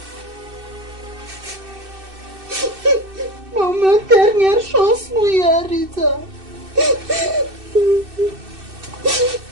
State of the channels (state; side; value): late; left; 2.6 ms